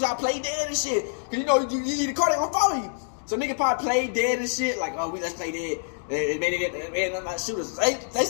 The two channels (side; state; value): right; silent; digital silence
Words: to play dead and shit. Cause you know, you leave the car, they gonna follow you. So niggas probably play dead and shit, like, oh, let's play dead. They made it shooters. They